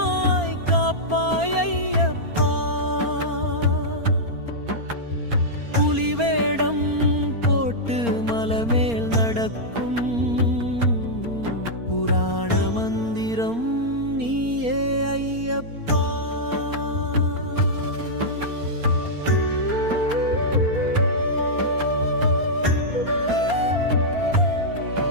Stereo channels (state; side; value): late; left; 4.3 ms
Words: காப்பாய் ஐயப்பா. புலிவேடம் போட்டு மலமேல் நடக்கும் புராண மந்திரம் நீயே ஐயப்பா.